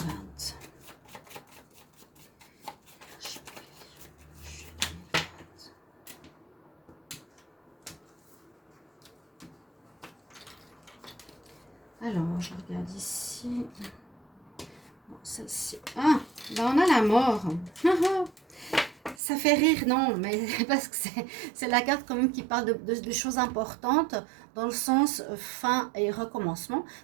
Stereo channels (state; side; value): drops out; left; at 19.2 s